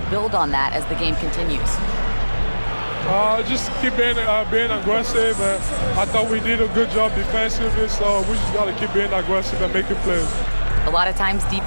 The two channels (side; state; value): both; inverted; correlation -1.00